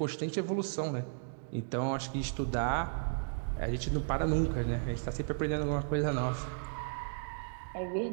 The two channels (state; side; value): silent; left; digital silence